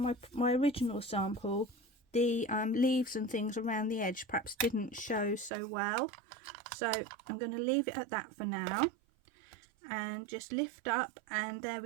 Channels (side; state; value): left; drops out; at 5.5 s